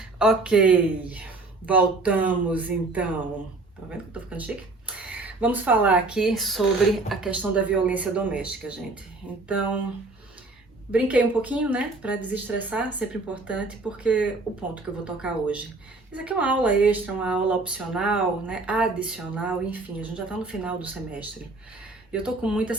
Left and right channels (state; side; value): quieter; left; 3.3 dB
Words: Ok, voltamos então. Tá vendo que eu tô ficando chique? Vamos falar aqui sobre a questão da violência doméstica, gente. Então, brinquei um pouquinho, né, para desestressar, sempre importante, porque o ponto que eu vou tocar hoje. Isso aqui é uma aula extra, uma aula opcional, né, adicional, enfim, a gente já tá no final do semestre. Eu tô com muita